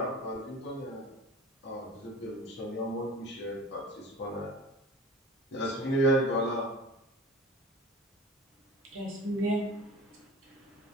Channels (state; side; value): normal; both; correlation 0.39